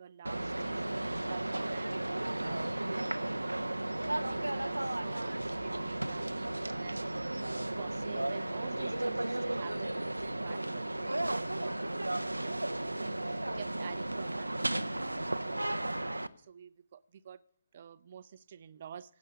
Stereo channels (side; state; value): both; inverted; correlation -0.98